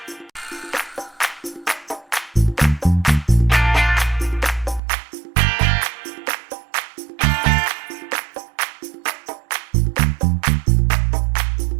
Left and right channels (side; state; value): left; drops out; at 4.8 s